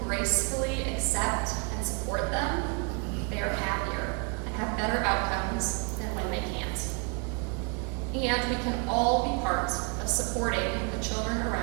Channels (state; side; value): quieter; left; 34.4 dB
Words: gracefully accept and support them, they are happier and have better outcomes than when they can't. And we can all be part of supporting the children